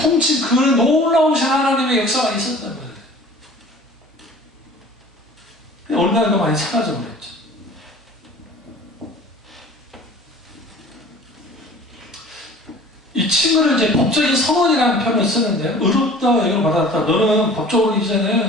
그 놀라우신 하나님의 역사가 있었단 말이에요. 어느 날도 많이 사라져 버렸죠. 이 친구를 이제 법적인 선언이라는 표현을 쓰는데요. 의롭다 여기로 받았다. 너는 법적으로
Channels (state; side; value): normal; both; correlation 0.45